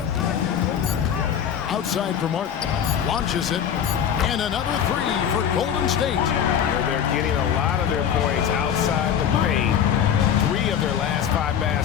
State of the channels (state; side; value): quieter; right; 8.7 dB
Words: Outside for Martin. Launches it. And another 3 for Golden State. They're getting a lot of their points outside the paint. 3 of their last 5